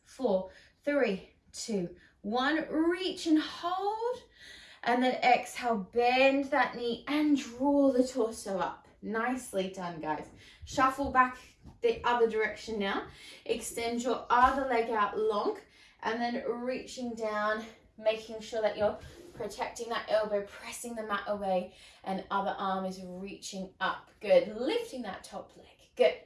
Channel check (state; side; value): identical; both; correlation 1.00